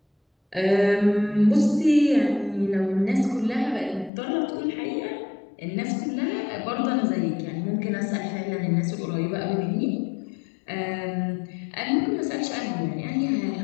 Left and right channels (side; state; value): right; drops out; at 4.1 s